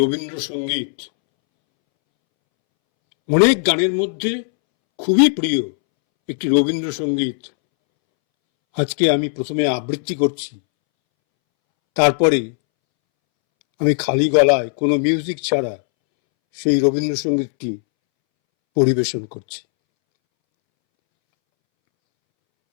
অনেক গানের মধ্যে খুবই প্রিয় একটি রবীন্দ্রসঙ্গীত আজকে আমি প্রথমে আবৃত্তি করছি, তারপরে আমি খালি গলায় কোনো মিউজিক ছাড়া সেই রবীন্দ্রসঙ্গীতটি পরিবেশন করছি।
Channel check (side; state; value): right; silent; 66 dB below the other